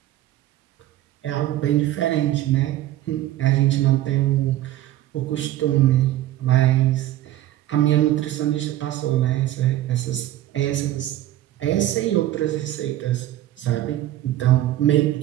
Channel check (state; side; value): quieter; left; 14.0 dB